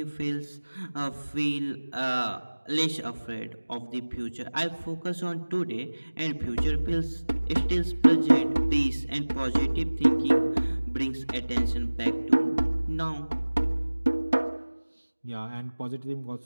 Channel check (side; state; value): both; inverted; correlation -1.00